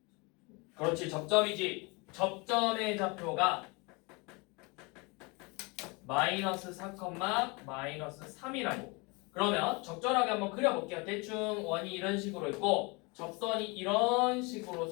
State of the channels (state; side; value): quieter; right; 28.3 dB